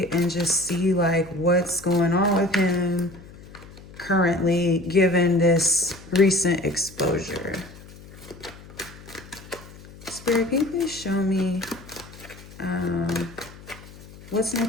and just see like what's going on with him currently given this recent exposure. Spirit, can you please show me what's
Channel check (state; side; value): noise; left; hum, 19 dB below the sound